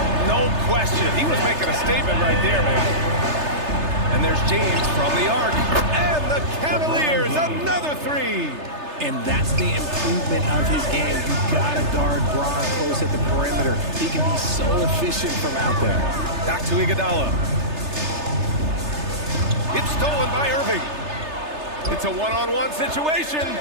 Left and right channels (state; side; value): late; left; 3.3 ms